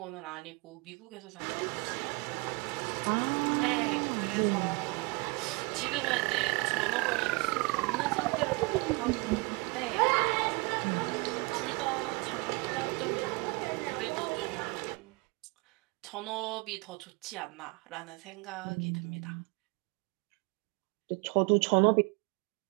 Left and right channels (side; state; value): left; quieter; 28.0 dB